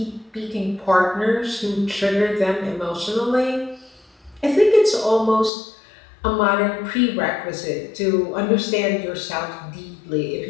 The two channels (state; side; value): drops out; right; at 5.5 s